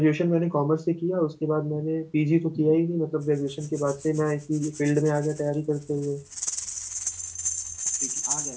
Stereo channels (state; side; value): identical; both; correlation 1.00